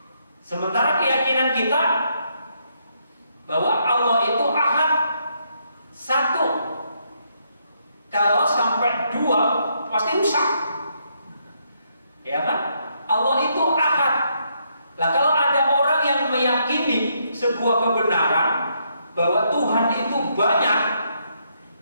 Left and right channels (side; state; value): both; inverted; correlation -0.75